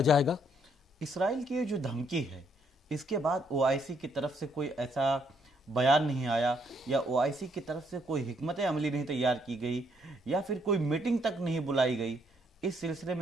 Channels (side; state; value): both; normal; correlation 0.71